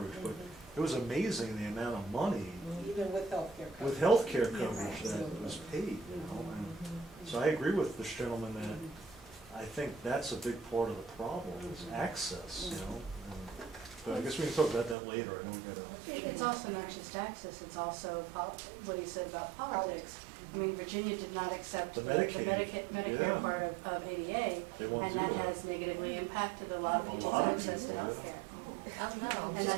but it was amazing the amount of money Even with healthcare coverage. with health care Yes, coverage that absolutely. was paid, you know. And so I agree with this gentleman that I think that's a big part of the problem, is access, you know. But I guess we can talk about that later. I know we gotta. It's also not just access, it's also what he said about politics. I mean, Virginia did not accept The the Medicaid. Medicare Yeah. part of ADA, They won't and do that that. has negatively impacted a lot of A people's lot of access to people, yeah. healthcare. Oh, no. And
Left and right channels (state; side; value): drops out; left; at 15.0 s